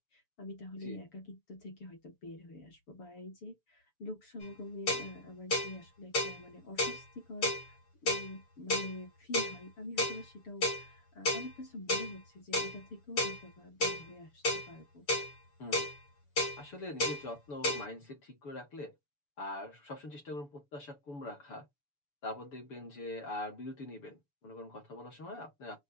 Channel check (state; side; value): late; right; 6.9 ms